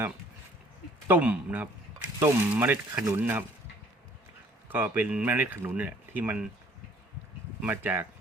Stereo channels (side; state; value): both; normal; correlation 0.58